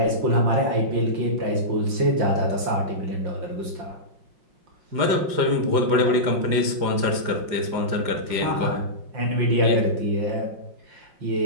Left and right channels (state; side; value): late; left; 5.6 ms